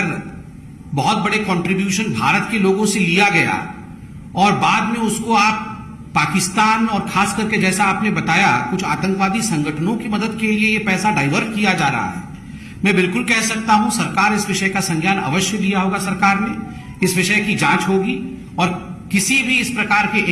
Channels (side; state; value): both; identical; correlation 1.00